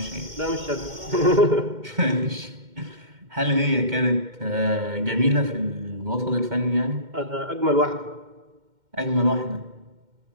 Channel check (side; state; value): left; late; 2.1 ms